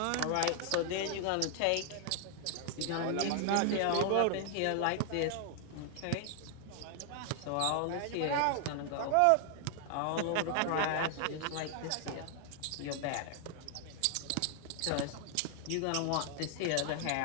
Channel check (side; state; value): both; different; correlation 0.00